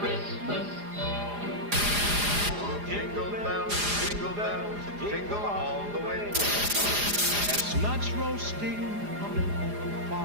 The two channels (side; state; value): left; late; 4.9 ms